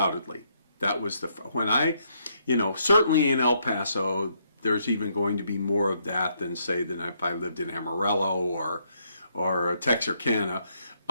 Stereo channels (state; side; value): inverted; both; correlation -0.73